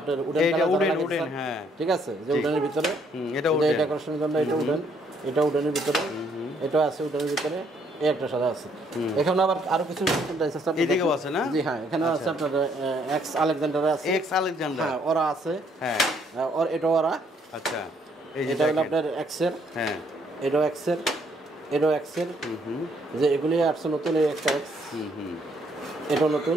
উডেন এটা কালার উডেন লাগানো উডেন, আছে, হ্যাঁ ঠিক আছে, যে উডেনের ভিতরে। এটা এই উডেন। ডেকোরেশনের জন্য এটা উডেন, এটা উডেনের ভিতরে, এটা আছে উডেনের ভিতরে, এই একটা সাদা আছে। এখানে আবার আরো কিছু ডিজাইন আছে। এদিকেও আছে না? জি হ্যাঁ, এখানে আছে আপনার এক্স আলেকজান্ডার আছে, এক্স আলেকজান্ডার, হ্যাঁ ওরা আছে, হ্যাঁ আর এটা ওরা। আচ্ছা এই যে এটা হলো দেখেন। আপনার এক্স এর, হ্যাঁ এটাও এক্স এর, এটাও এক্স এর। যে এগুলি আসছে নতুন, এই একটা এক্স, এটাও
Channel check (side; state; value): both; normal; correlation 0.68